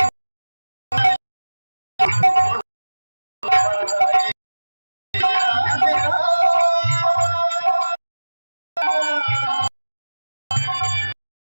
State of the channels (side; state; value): both; inverted; correlation -1.00